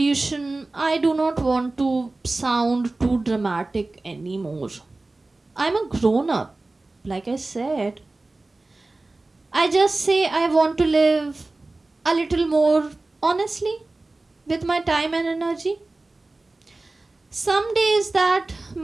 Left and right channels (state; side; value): quieter; left; 3.1 dB